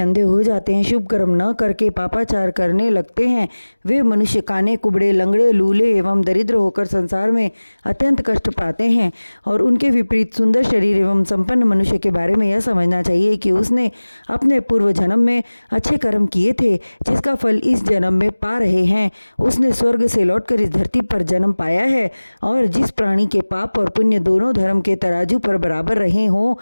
हो जाते हैं, शुभ कर्म न करके पापाचार करने लगते हैं, वे मनुष्य काने, कुबड़े, लंगड़े, लूले एवं दरिद्र होकर संसार में अत्यंत कष्ट पाते हैं। और उनके विपरीत सुंदर शरीर एवं संपन्न मनुष्य के बारे में यह समझना चाहिए कि उसने अपने पूर्व जन्म में अच्छे कर्म किए थे, जिसका फल इस जन्म में पा रहे हैं। उसने स्वर्ग से लौटकर इस धरती पर जन्म पाया है, और जिस प्राणी के पाप और पुण्य दोनों धर्म के तराजू पर बराबर रहे हों,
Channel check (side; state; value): both; inverted; correlation -1.00